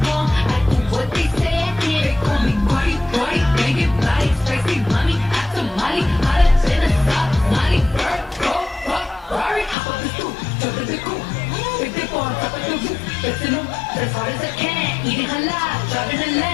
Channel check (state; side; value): drops out; right; at 9.8 s